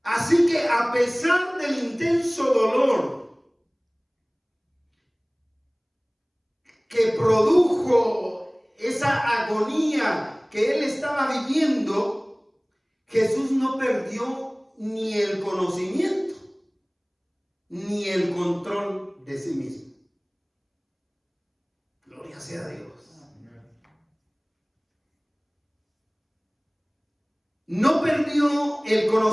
Así que a pesar del intenso dolor que produjo esa agonía que él estaba viviendo, Jesús no perdió ni el conocimiento ni el control de sí mismo. Gloria sea a Dios. No perdió el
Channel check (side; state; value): both; identical; correlation 1.00